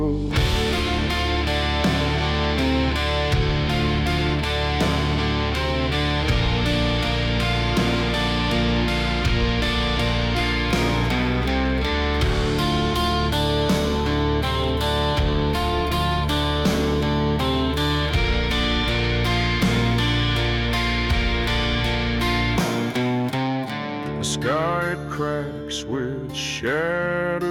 The sky it cracks with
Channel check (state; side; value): identical; both; correlation 1.00